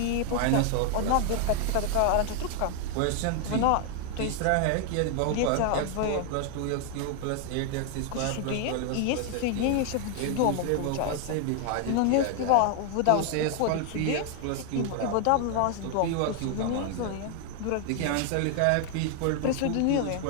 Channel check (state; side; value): different; both; correlation 0.00